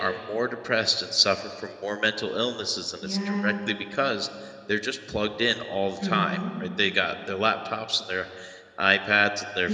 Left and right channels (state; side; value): identical; both; correlation 1.00